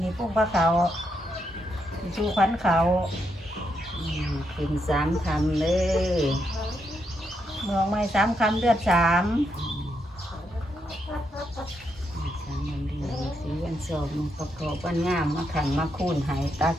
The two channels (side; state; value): both; normal; correlation 0.80